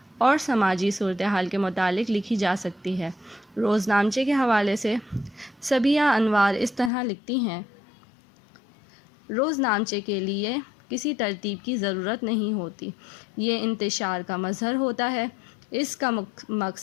اور سماجی صورتحال کے متعلق لکھی جا سکتی ہے۔ روز نامچے کے حوالے سے صبیہ انوار اس طرح لکھتی ہیں، روز نامچے کے لیے کسی ترتیب کی ضرورت نہیں ہوتی، یہ انتشار کا مظہر ہوتا ہے۔ اس کا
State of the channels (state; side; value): drops out; right; at 6.9 s